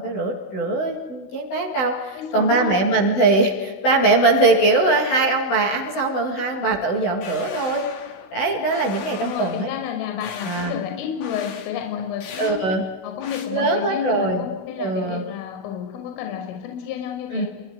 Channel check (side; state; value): right; late; 16 ms